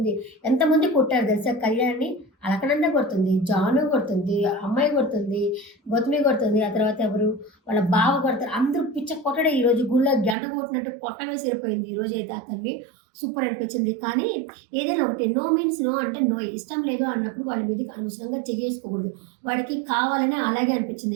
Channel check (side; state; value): left; drops out; at 10.4 s